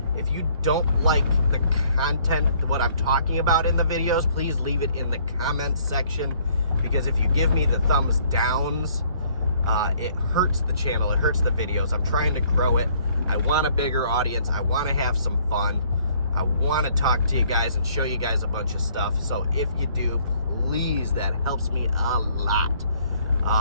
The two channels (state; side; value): inverted; both; correlation -0.61